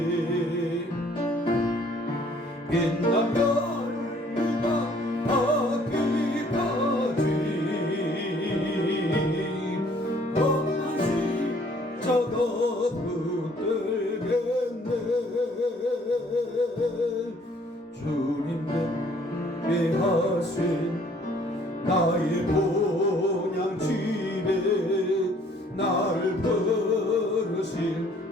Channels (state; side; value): normal; both; correlation 0.60